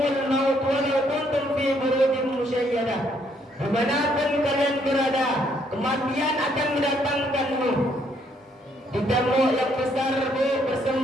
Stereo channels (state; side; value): normal; both; correlation 0.69